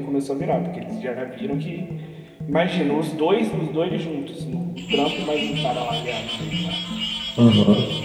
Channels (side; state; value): both; identical; correlation 1.00